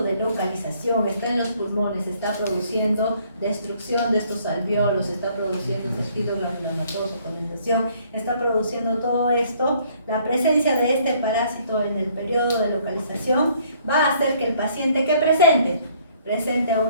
de localización está en los pulmones, está produciendo destrucción de estos alvéolos, está produciendo tejido granulomatoso, condensación, está produciendo todo esto. La presencia de este parásito en el periodo de localización va a hacer que el paciente que presente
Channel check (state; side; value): inverted; both; correlation -0.62